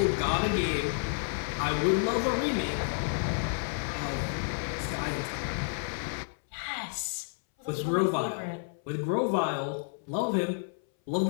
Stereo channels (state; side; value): silent; right; 58 dB below the other